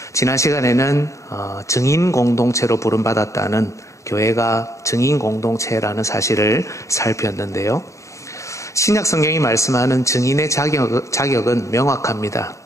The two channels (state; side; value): late; right; 0.15 ms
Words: 지난 시간에는 증인 공동체로 부름받았다는 교회가 증인 공동체라는 사실을 살폈는데요. 신약 성경이 말씀하는 증인의 자격은 명확합니다.